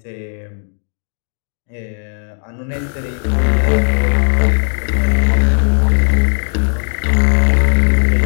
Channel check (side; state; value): right; silent; digital silence